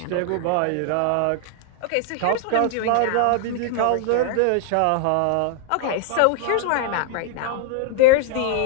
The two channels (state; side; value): different; both; correlation 0.00